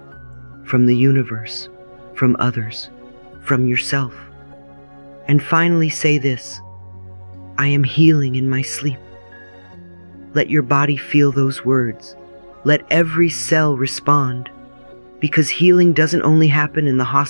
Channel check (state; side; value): inverted; both; correlation -1.00